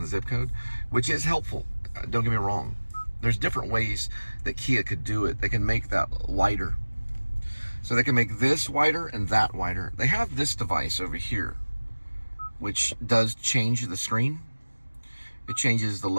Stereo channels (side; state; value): both; inverted; correlation -1.00